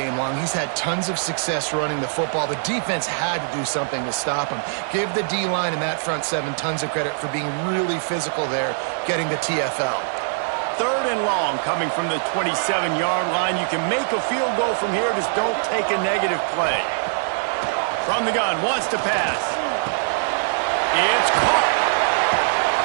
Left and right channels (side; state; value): left; silent; 64 dB below the other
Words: long. He's had tons of success running the football. The defense had to do something to stop him. Give the D-line and that front seven tons of credit for being really physical there, getting the TFL. 3rd and long coming from the 27-yard line. You can make a field goal from here, just don't take a negative play. From the gun, wants to pass. It's caught.